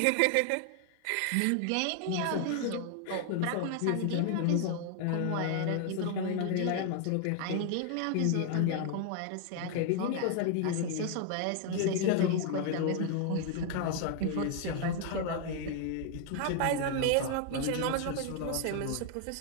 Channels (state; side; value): different; both; correlation 0.00